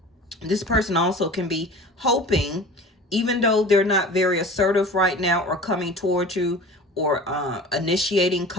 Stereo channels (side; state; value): both; normal; correlation 0.39